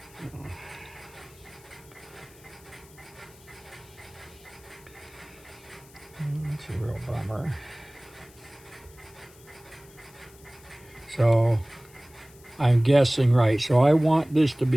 That's a real bummer. So I'm guessing right. So I want this to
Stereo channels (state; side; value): noise; left; hiss, 25 dB below the sound